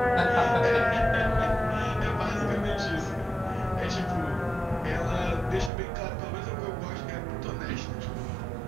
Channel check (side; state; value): left; drops out; at 5.7 s